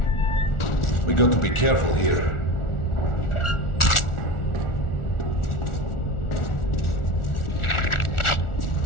We got to be careful here.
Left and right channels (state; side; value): late; right; 1.4 ms